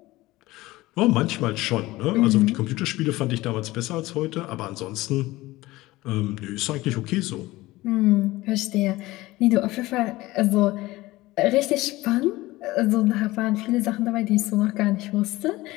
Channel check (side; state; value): right; quieter; 18.8 dB